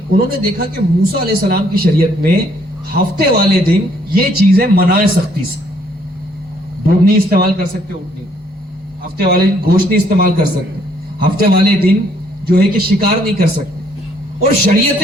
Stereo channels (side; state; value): both; normal; correlation 0.66